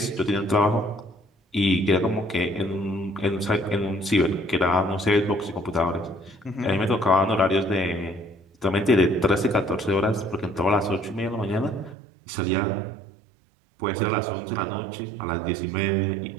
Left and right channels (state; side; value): drops out; left; at 12.0 s